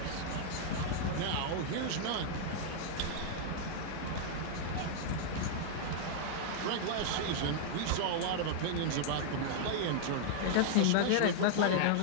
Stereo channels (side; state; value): both; different; correlation -0.01